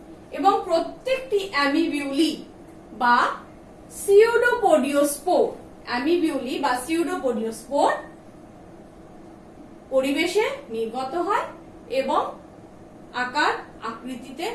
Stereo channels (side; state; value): both; identical; correlation 1.00